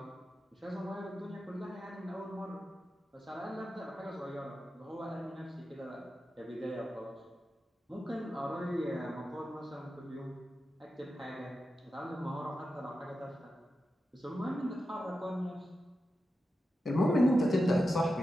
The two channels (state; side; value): normal; both; correlation 0.90